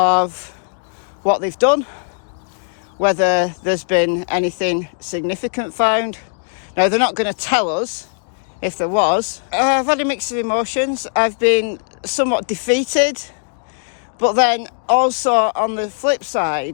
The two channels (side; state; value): right; silent; digital silence